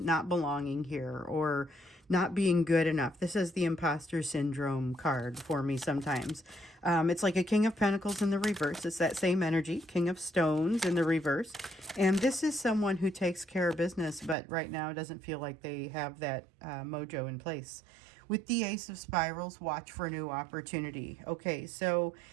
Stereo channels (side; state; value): left; drops out; at 14.4 s